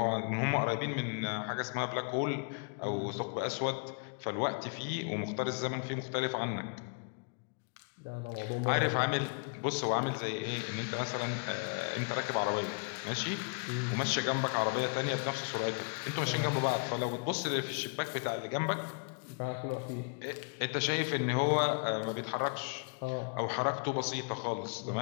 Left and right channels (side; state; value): right; quieter; 38.7 dB